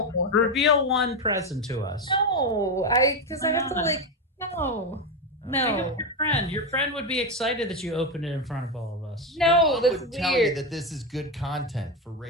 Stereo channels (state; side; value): normal; both; correlation 0.11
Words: Yeah. Reveal one present to us. No. Because I have to, like, no. No. Your friend. Your friend would be excited that you opened it in front of all of us. No, that's would weird. Tell you that this is good content for